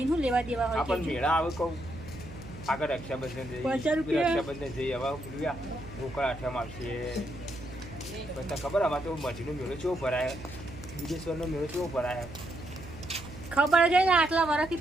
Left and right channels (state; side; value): noise; right; hum, 14 dB below the sound